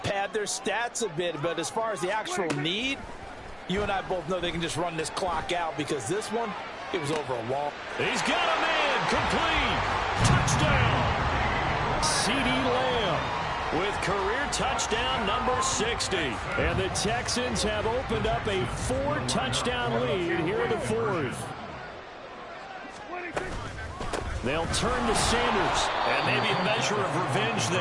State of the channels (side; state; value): both; identical; correlation 1.00